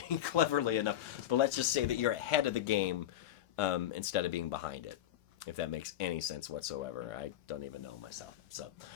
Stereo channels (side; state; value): right; quieter; 12.0 dB